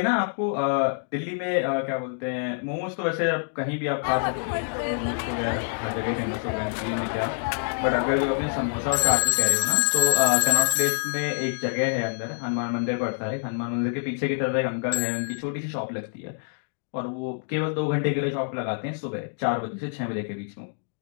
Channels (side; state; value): right; silent; digital silence